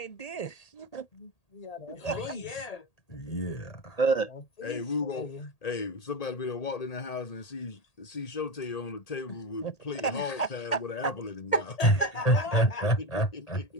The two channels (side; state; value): right; late; 1.8 ms